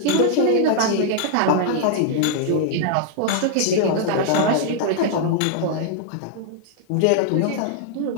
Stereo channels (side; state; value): both; different; correlation -0.01